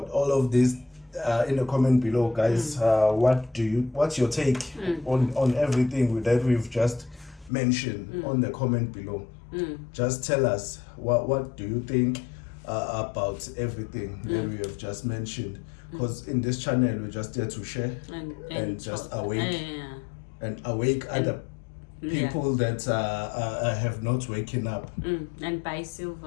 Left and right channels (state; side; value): drops out; right; at 7.5 s